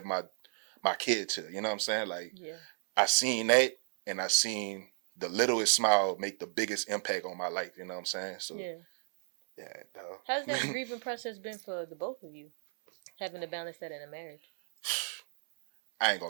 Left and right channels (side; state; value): left; silent; 56 dB below the other